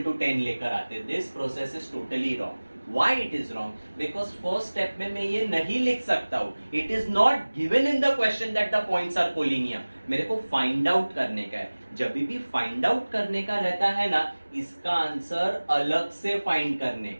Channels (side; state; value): both; inverted; correlation -1.00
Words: to 10 लेकर आते. This process is totally wrong. Why it is wrong? Because first step में मैं ये नहीं लिख सकता हूँ. It is not given in the question that the points are collinear. मेरे को find out करने का है. जब भी find out करने का रहता है ना, इसका आंसर अलग से find करने